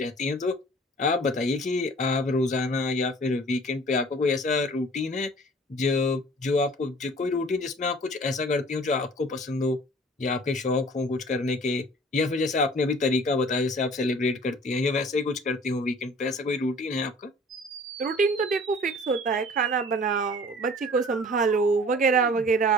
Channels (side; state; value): both; normal; correlation 0.48